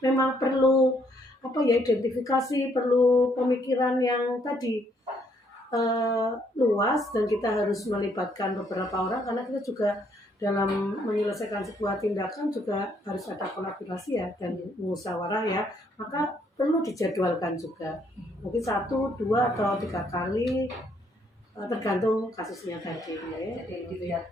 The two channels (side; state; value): both; normal; correlation 0.69